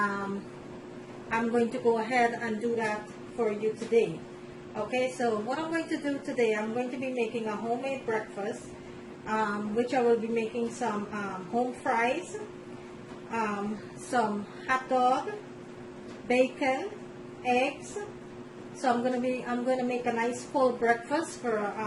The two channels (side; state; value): both; identical; correlation 1.00